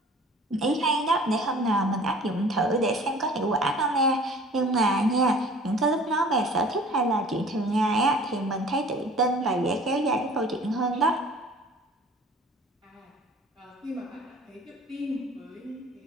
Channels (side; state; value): both; normal; correlation 0.47